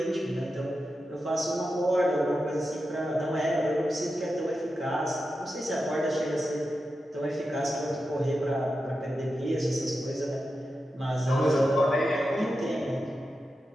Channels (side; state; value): both; normal; correlation 0.90